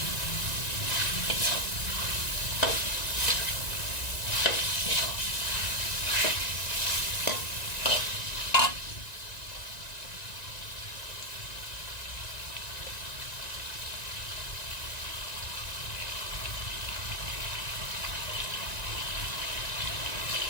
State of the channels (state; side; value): late; right; 1.9 ms